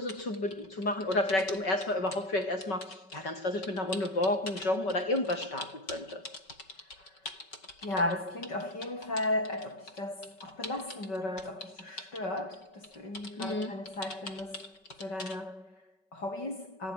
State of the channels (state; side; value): late; right; 5.3 ms